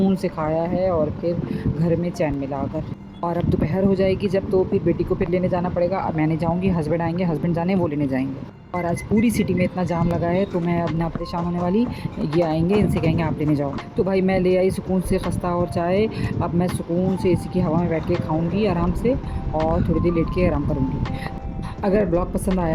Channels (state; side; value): identical; both; correlation 1.00